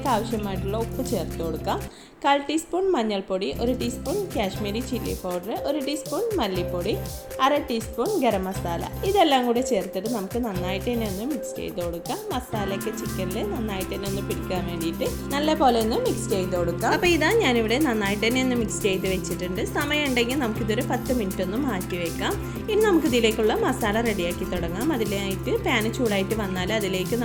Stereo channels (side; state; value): both; identical; correlation 1.00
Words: ആവശ്യമായിട്ടുള്ള ഉപ്പ് ചേർത്ത് കൊടുക്കാം. 1/4 ടീസ്പൂൺ മഞ്ഞൾപ്പൊടി, 1 teaspoon Kashmiri chilli powder, 1 teaspoon മല്ലിപ്പൊടി, 1/2 ടീസ്പൂൺ ഗരം മസാല. ഇതെല്ലാം കൂടി ചേർത്തിട്ട് നമുക്ക് നന്നായിട്ട് തന്നെ ഒന്ന് മിക്സ് ചെയ്ത് കൊടുക്കാം. മസാലയൊക്കെ ചിക്കനിൽ നന്നായിട്ട് തന്നെ ഒന്ന് പിടിക്കാൻ വേണ്ടിയിട്ട് നല്ല പോലെ ഒന്ന് മിക്സ് ചെയ്ത് കൊടുക്കാം. അപ്പോൾ ഇതാ ഞാനിവിടെ നന്നായിട്ട് തന്നെ ഒന്ന് മിക്സ് ചെയ്ത് വെച്ചിട്ടുണ്ട്. സമയം ഉണ്ടെങ്കിൽ നമുക്കിതൊരു 10 മിനിറ്റ് ഒന്ന് മാറ്റി വെക്കാം. ഇനി നമുക്കിതിലേക്കുള്ള മസാല റെഡിയാക്കി തുടങ്ങാം. അതിലായിട്ട് പാന് ചൂടായിട്ട് വന്നാൽ അതിലേക്ക്